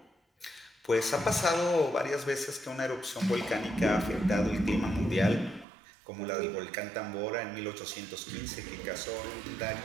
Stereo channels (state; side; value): drops out; left; at 5.7 s